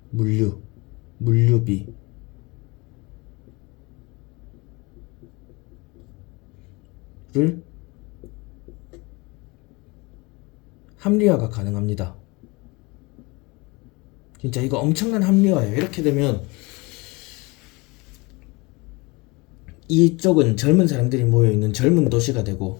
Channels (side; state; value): right; quieter; 25.4 dB